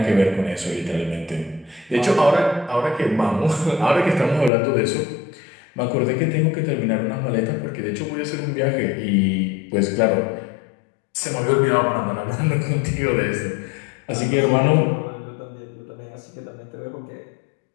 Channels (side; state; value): right; drops out; at 4.5 s